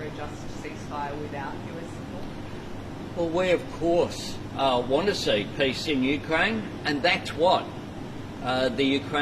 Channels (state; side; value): identical; both; correlation 1.00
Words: a just ceasefire without US support? Well, we of course want to see peace in Ukraine, and that's what the